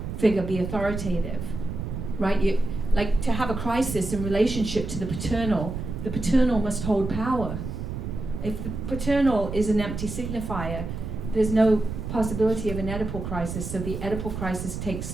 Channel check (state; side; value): noise; right; rumble, 6 dB below the sound